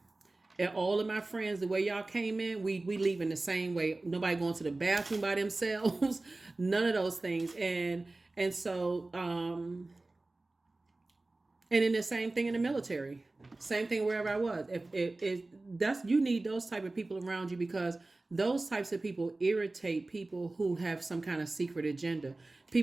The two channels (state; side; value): quieter; left; 3.1 dB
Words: all of my friends, the way y'all came in, we leaving the same way. Nobody going to the bathroom by themselves, none of those things. And so, and then the same thing in the military, same thing wherever I was. If that's, you need those type of people around you, because those types of people irritate people who have some kind of secret agenda,